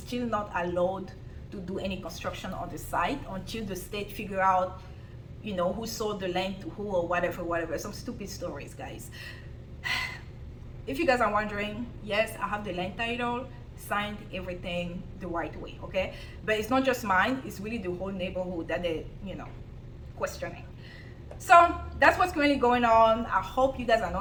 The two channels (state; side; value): identical; both; correlation 1.00